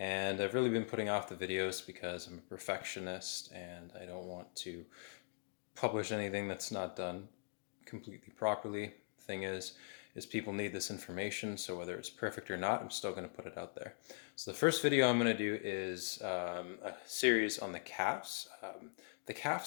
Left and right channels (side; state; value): right; silent; digital silence